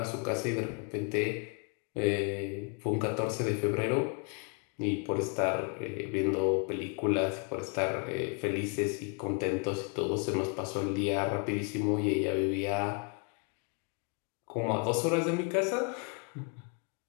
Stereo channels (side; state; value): right; quieter; 35.5 dB